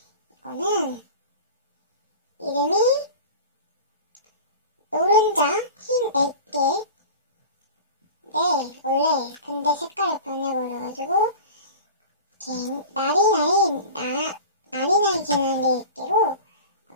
이거는 이름이 노른자 흰 액기. 네, 원래 근데 색깔이 변해버려가지고 나리나리 진한 액기로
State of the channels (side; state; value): both; inverted; correlation -0.35